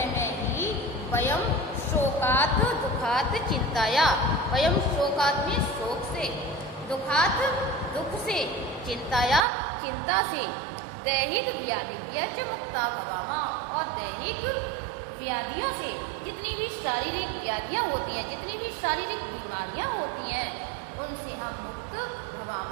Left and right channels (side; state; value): left; drops out; at 9.5 s